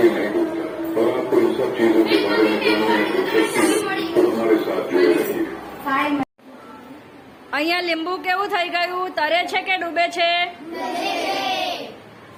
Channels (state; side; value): identical; both; correlation 1.00